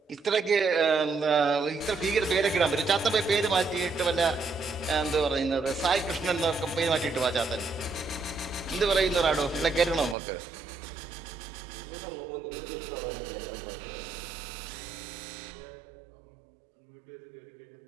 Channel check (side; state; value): left; drops out; at 10.2 s